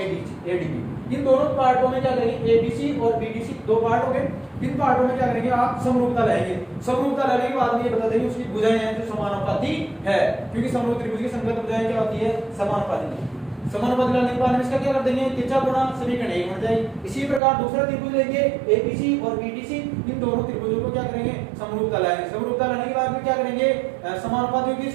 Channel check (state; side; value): drops out; left; at 17.4 s